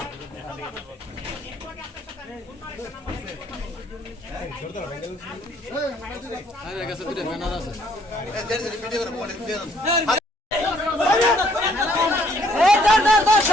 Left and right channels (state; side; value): normal; both; correlation 0.65